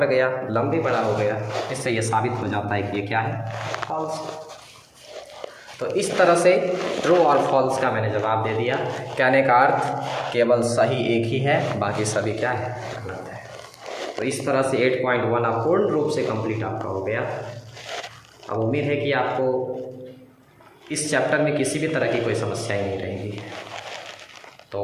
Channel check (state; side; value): identical; both; correlation 1.00